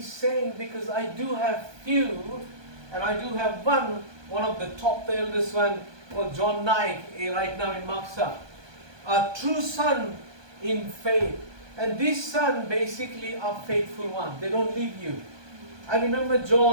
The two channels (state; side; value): late; left; 1.2 ms